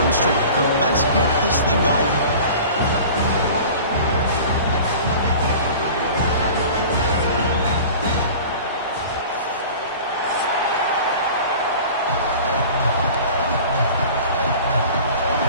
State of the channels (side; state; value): both; inverted; correlation -0.41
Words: Kirk, let's get this thing going.